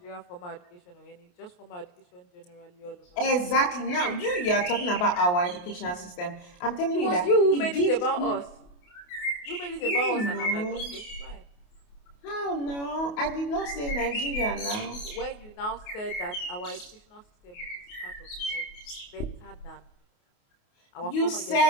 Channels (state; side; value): late; right; 28 ms